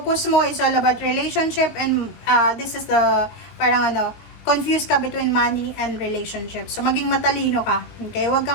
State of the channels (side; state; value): right; late; 19 ms